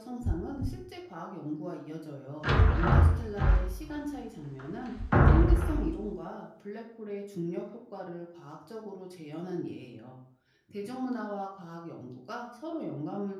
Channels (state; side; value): identical; both; correlation 1.00